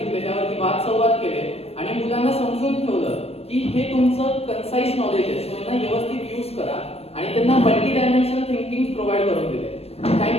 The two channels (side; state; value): right; late; 0.29 ms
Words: त्यावरती वाद संवाद केले आणि मुलांना समजून ठेवलं की हे तुमचं कन्साइज नॉलेज आहे, सो यांना व्यवस्थित यूज करा आणि त्यांना मल्टी डायमेन्शनल थिंकिंग प्रोव्हाइड करून दिले.